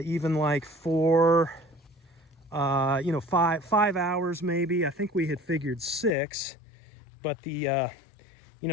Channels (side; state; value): right; drops out; at 6.2 s